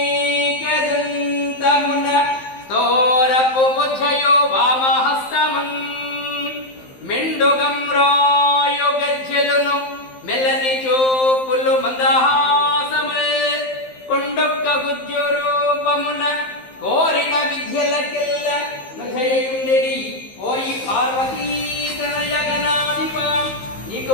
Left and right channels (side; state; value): right; late; 15 ms